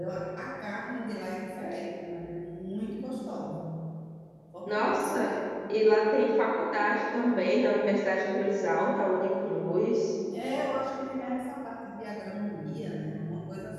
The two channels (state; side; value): identical; both; correlation 1.00